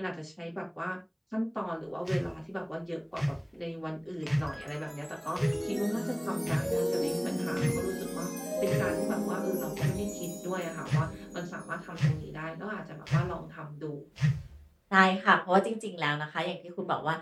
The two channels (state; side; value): identical; both; correlation 1.00